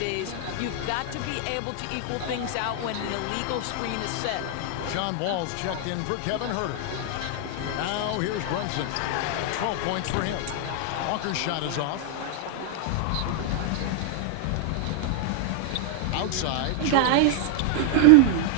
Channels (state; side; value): different; both; correlation 0.00